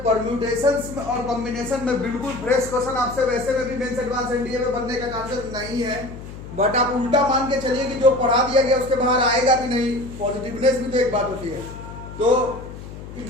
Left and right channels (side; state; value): left; noise; hum, 13 dB below the sound